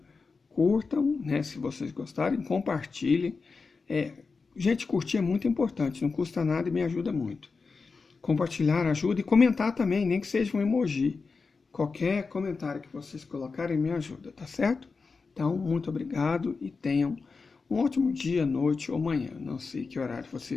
Curtam, né, se vocês gostarem, compartilhem. Gente, curtir é muito importante, não custa nada e me ajuda muito. Compartilhar ajuda e comentar também, nem que seja um emoji. Qualquer comentário que vocês colocarem me ajuda, tá certo? Então, muito obrigado e tenham um ótimo dia, noite ou manhã. Não sei que horário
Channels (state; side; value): quieter; right; 4.5 dB